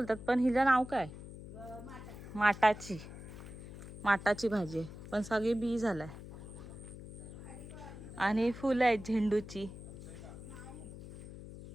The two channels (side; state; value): left; noise; hum, 13 dB below the sound